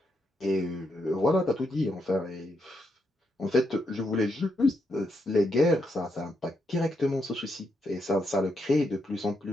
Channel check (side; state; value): both; normal; correlation 0.81